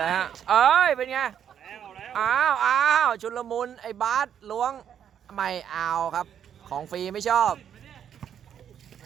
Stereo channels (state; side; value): quieter; left; 9.0 dB